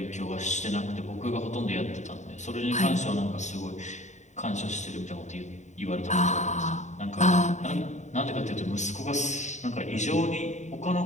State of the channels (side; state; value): right; late; 0.34 ms